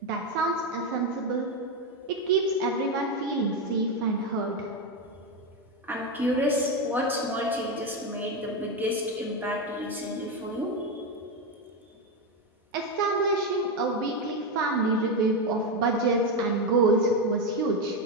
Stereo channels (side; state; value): both; normal; correlation 0.10